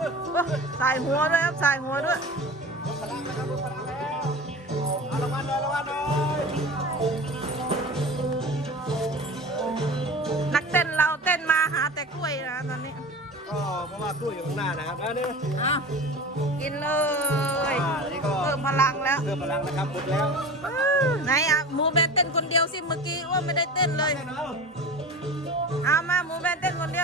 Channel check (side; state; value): both; normal; correlation 0.34